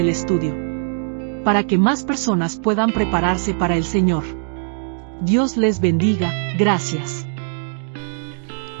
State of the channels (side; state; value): left; silent; digital silence